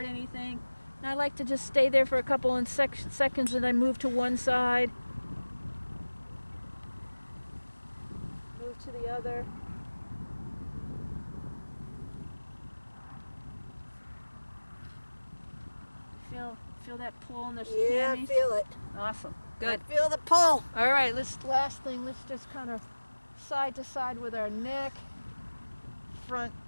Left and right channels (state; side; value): inverted; both; correlation -1.00